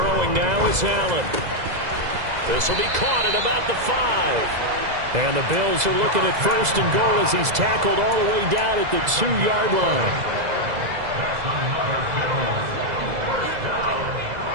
now is Allen. This will be caught at about the 5. And the Bills are looking at 1st and goal as he's tackled all the way down at the 2-yard line.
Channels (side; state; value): left; late; 2.0 ms